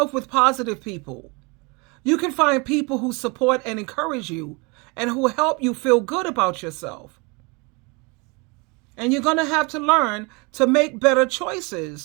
with positive people. You can find people who support and encourage you and who help you feel good about yourself. And you're going to have to learn to make better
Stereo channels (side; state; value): left; quieter; 29.2 dB